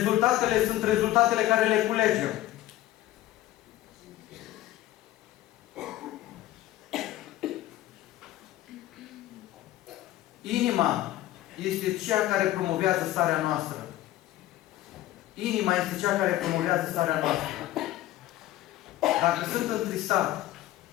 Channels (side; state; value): right; quieter; 15.0 dB